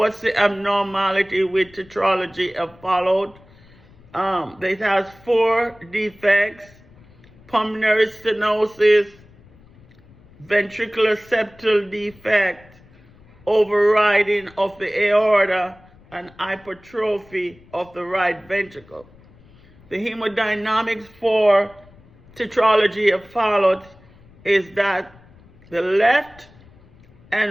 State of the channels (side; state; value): left; noise; rumble, 26 dB below the sound